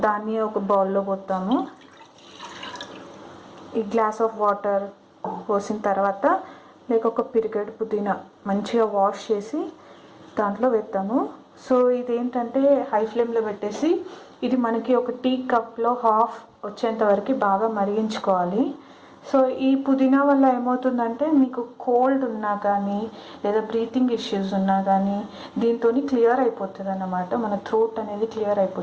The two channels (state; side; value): identical; both; correlation 1.00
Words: దాన్ని ఒక బౌల్లో పోతాము. ఈ గ్లాస్ ఆఫ్ వాటర్ పోసిన తర్వాత ఒక పిరికెడు పుదీనా మంచిగా వాష్ చేసి దాంట్లో వేస్తాము. సో ఇదేంటంటే హై ఫ్లేమ్లో పెట్టేసి ఇది మనకి ఒక టీ కప్లో హాఫ్ వచ్చేంత వరకు బాగా మరిగించుకోవాలి. సో ఈ పుదీనా వల్ల ఏమవుతుందంటే మీకు కోల్డ్ ఉన్నా కానీ లేదా బ్రీతింగ్ ఇష్యూస్ ఉన్నా కానీ దీంతో క్లియర్ అయిపోతుంది అన్నమాట. మన థ్రోట్ అనేది క్లియర్